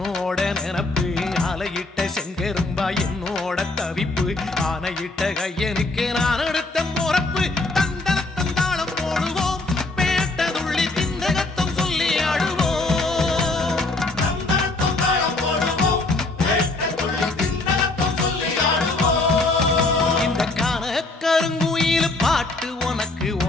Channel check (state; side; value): quieter; right; 3.1 dB